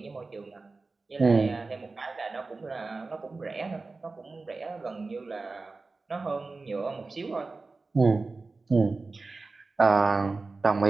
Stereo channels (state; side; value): quieter; left; 3.7 dB